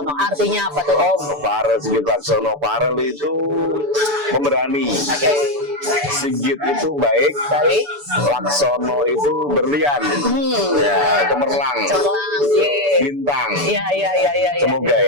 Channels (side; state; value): left; late; 6.9 ms